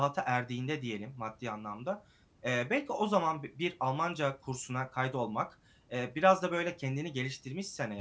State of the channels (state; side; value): identical; both; correlation 1.00